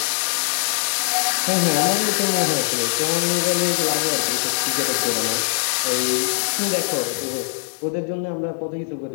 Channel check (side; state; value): right; silent; digital silence